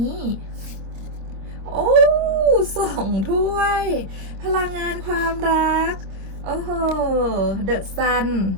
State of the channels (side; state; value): left; late; 26 ms